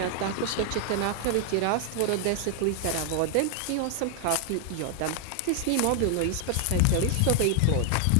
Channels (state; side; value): different; both; correlation 0.00